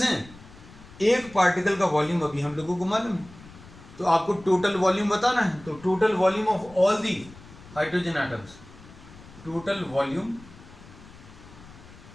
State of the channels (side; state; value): left; noise; rumble, 20 dB below the sound